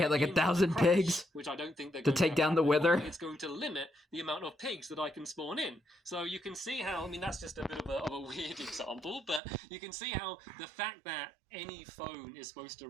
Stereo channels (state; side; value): drops out; left; at 9.4 s